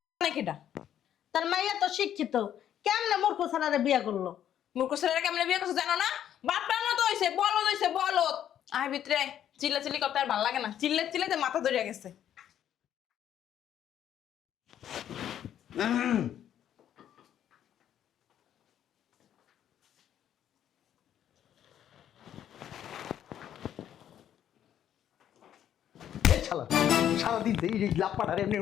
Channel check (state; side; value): quieter; right; 10.4 dB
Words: নাকিটা তার মাইয়া তো শিক্ষিত, কেমনে মূর্খ ছাড়ারে বিয়া করলো? মূর্খ ছেলেরা কেমনে বিয়ে করছে জানো না? বাপটার মতো হইছে, বলদ হইছে বলদ। আয় ভিতরে চিল্লা চিল্লি করতে আর ভালো লাগে না, চিল্লাতে মাথা ধরে গেছে। এই শালা সারাদিন এই লাপাটার এমনি